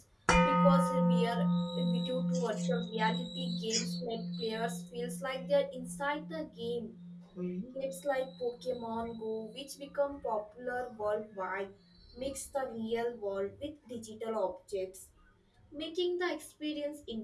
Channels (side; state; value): both; identical; correlation 1.00